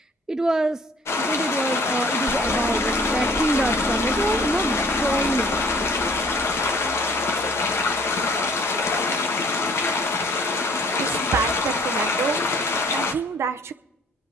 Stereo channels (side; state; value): both; normal; correlation 0.56